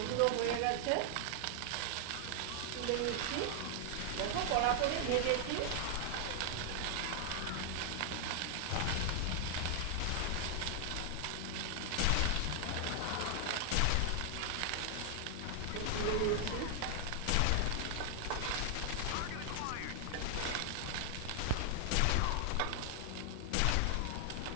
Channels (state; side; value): different; both; correlation 0.00